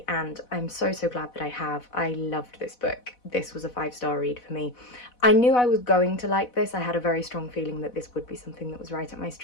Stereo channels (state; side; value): late; right; 4.1 ms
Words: and I'm so glad that I have. I loved this book. This was a 5-star read for me. I knew I was going to like this. I had a very strong feeling that this would be something that was right up my